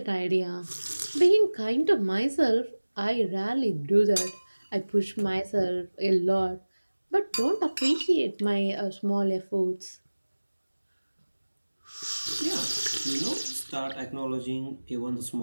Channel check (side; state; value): both; inverted; correlation -1.00